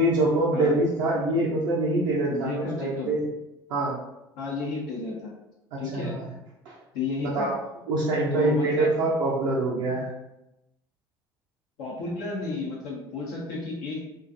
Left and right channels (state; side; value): normal; both; correlation 0.39